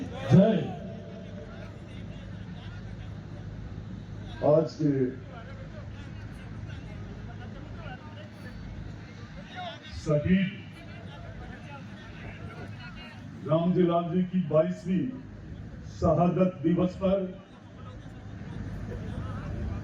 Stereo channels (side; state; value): both; identical; correlation 1.00